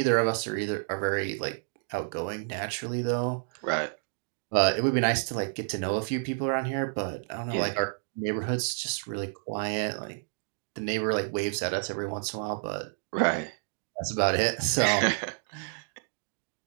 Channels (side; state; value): left; silent; digital silence